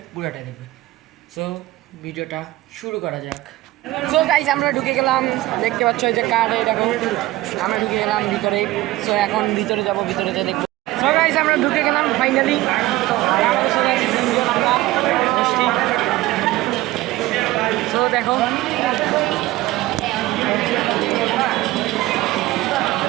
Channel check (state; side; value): quieter; left; 17.6 dB